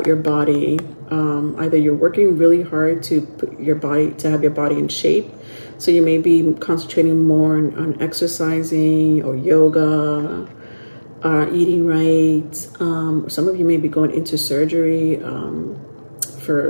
your body. Either you're working really hard to have your body in shape. So you may be concentrating more on exercising or yoga, eating right. Some of you may be going into surgery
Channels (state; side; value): inverted; both; correlation -1.00